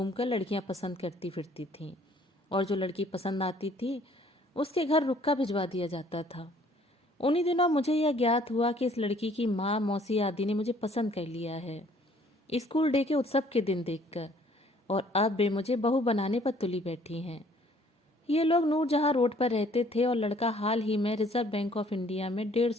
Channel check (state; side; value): normal; both; correlation 0.59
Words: लड़कियां पसंद करती फिरती थीं और जो लड़की पसंद आती थी उसके घर रुक्का भिजवा दिया जाता था। उन्हीं दिनों मुझे यह ज्ञात हुआ कि इस लड़की की माँ मौसी आदि ने मुझे पसंद कर लिया है, स्कूल डे के उत्सव के दिन देखकर, और अब वे मुझे बहू बनाने पर तुली बैठी हैं। ये लोग नूरजहां रोड पर रहते थे और लड़का हाल ही में रिजर्व बैंक ऑफ इंडिया में